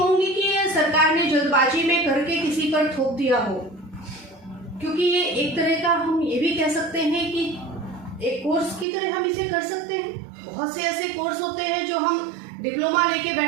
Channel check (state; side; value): drops out; left; at 8.8 s